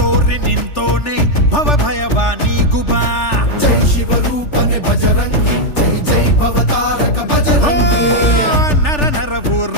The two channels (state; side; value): late; right; 3.4 ms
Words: ನಿಂತೋನೆ ಭವ ಭಯವಾ ನೀಗುಬಾ ಜೈ ಶಿವ ರೂಪನೆ ಬಜರಂಗಿ ಜೈ ಜೈ ಭವತಾರಕ ಬಜರಂಗಿ ನರ ನರವು